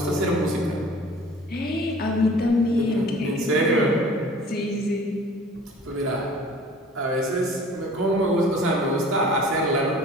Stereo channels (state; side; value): normal; both; correlation 0.47